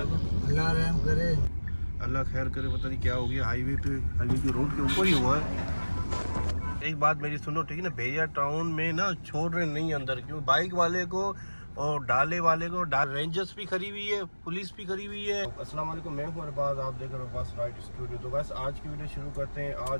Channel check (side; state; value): both; inverted; correlation -1.00